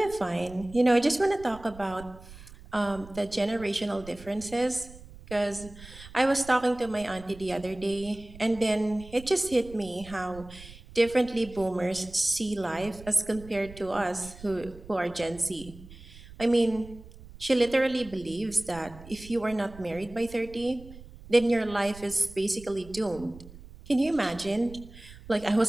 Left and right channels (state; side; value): noise; right; rumble, 18 dB below the sound